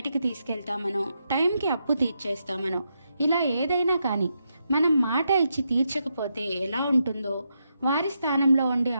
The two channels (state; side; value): inverted; both; correlation -0.83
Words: తీసుకెళ్తామనో, టైంకి అప్పు తీర్చేస్తామనో, ఇలా ఏదైనా కానీ మనం మాట ఇచ్చి తీర్చకపోతే ఎలా ఉంటుందో వారి స్థానంలో ఉండి